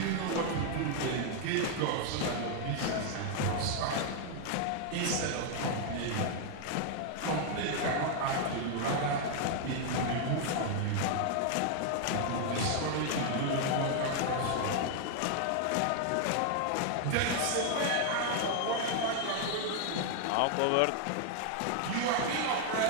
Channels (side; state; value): both; different; correlation 0.00